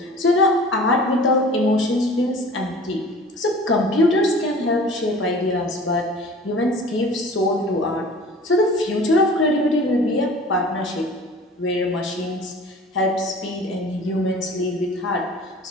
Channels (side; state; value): both; normal; correlation 0.44